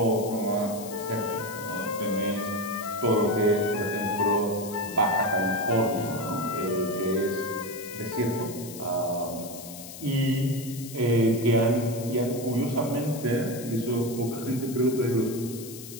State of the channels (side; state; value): left; noise; hiss, 13 dB below the sound